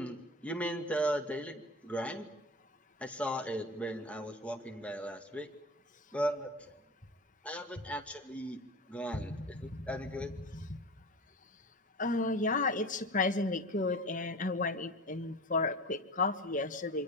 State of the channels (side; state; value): both; normal; correlation 0.32